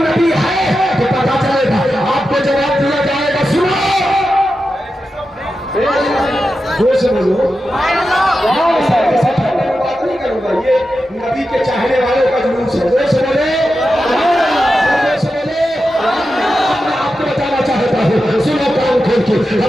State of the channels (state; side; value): normal; both; correlation 0.90